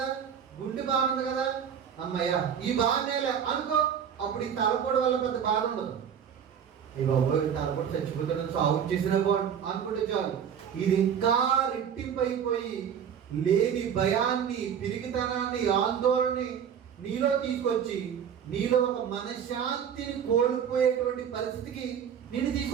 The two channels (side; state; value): left; quieter; 8.1 dB